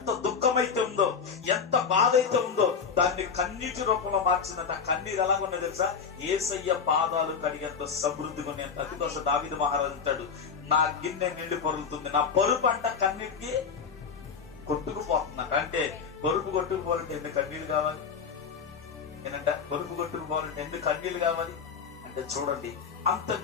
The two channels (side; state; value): right; quieter; 6.1 dB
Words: దుఃఖమైతే ఉందో, ఎంత బాధ అయితే ఉందో, దాన్ని కన్నీటి రూపంలో మార్చిందంట. కన్నీరు ఎలాగున్నాయి తెలుసా? యేసయ్య పాదాలు కడిగేంత సమృద్ధిగా ఉన్నాయంట. అందుకోసం దావీదు మహారాజు అంటాడు, నా గిన్నె నిండి పొరుగుతుంది, నా పరుపు అంట కన్నీటికి కొట్టుకుపోతుందంట. అంటే పరుపు కొట్టుకుపోవాలంటే ఎన్ని కన్నీళ్ళు కావాలి? నేనంట పరుపు కొట్టుకుపోవాలంటే ఎన్ని కన్నీళ్ళు కావాలి అంటే, చూడండి, అంత